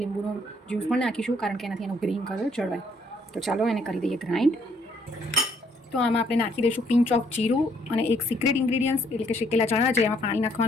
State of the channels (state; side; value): normal; both; correlation 0.68